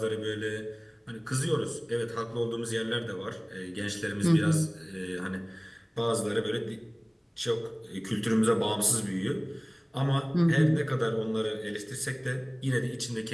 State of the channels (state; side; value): identical; both; correlation 1.00